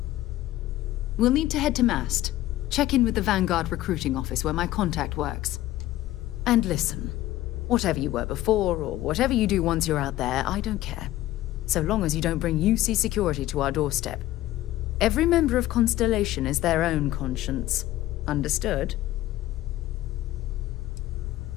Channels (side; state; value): right; quieter; 15.2 dB